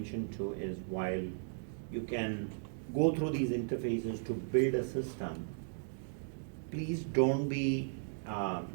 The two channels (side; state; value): left; silent; digital silence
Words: to is, while you can go through these interfaces to build a system, please don't be